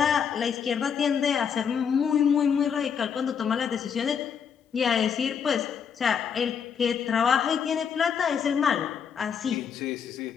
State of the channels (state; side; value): quieter; right; 7.2 dB